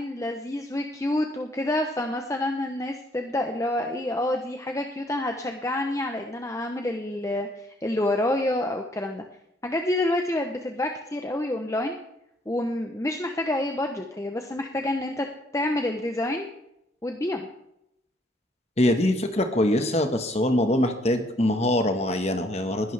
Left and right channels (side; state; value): both; normal; correlation 0.66